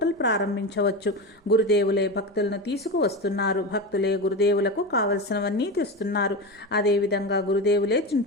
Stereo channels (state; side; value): normal; both; correlation 0.21